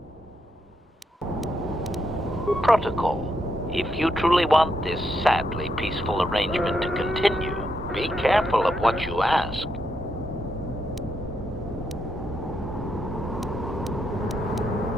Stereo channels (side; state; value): both; normal; correlation 0.80